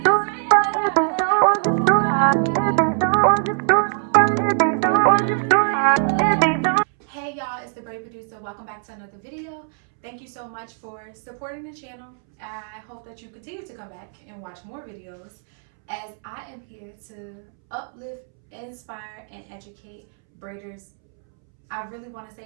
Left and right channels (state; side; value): silent; left; 64 dB below the other